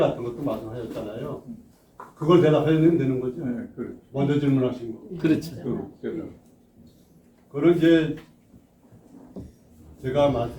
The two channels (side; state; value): both; identical; correlation 1.00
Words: 것도 말씀하셨잖아요. 그걸 대답하면 되는 거죠. 먼저 질문하신 거. 그렇죠. 그걸 이제 제가